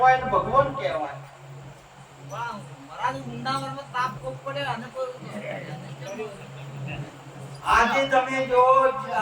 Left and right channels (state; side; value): identical; both; correlation 1.00